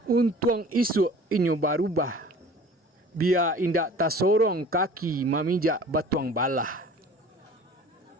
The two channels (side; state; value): both; normal; correlation 0.45